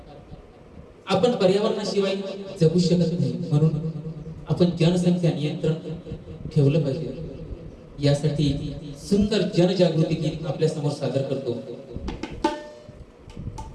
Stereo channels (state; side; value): identical; both; correlation 1.00